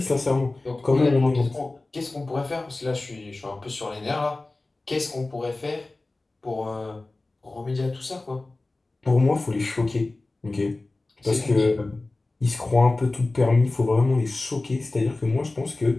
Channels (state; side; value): quieter; right; 3.1 dB